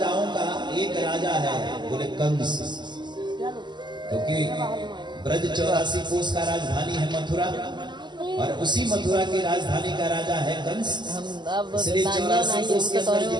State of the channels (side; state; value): left; late; 0.21 ms